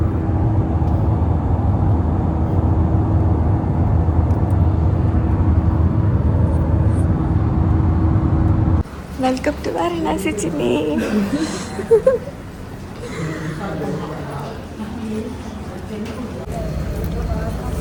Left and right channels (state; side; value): identical; both; correlation 1.00